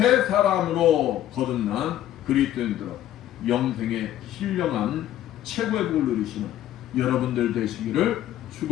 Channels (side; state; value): right; quieter; 12.4 dB